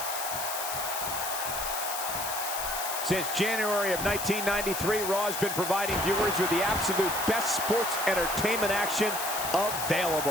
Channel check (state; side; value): noise; left; hiss, 5 dB below the sound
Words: Since January of 1993, Raw has been providing viewers with the absolute best sports entertainment action